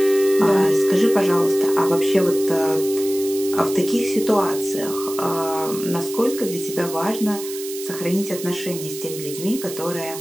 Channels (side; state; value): right; noise; hiss, 11 dB below the sound